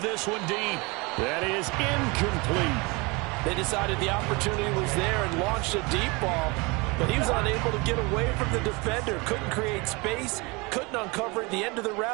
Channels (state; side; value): quieter; left; 26.8 dB